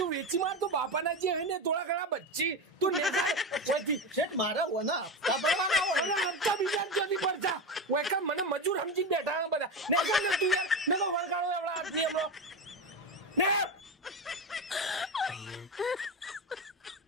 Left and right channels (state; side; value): normal; both; correlation 0.19